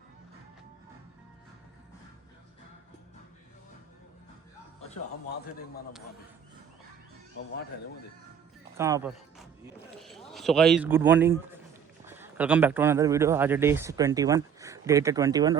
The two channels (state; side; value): quieter; left; 7.7 dB